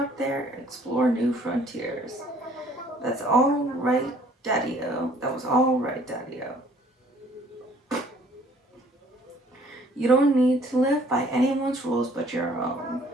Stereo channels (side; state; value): both; normal; correlation 0.58